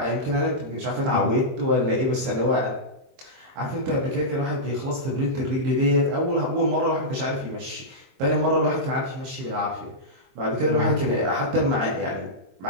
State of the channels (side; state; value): left; late; 22 ms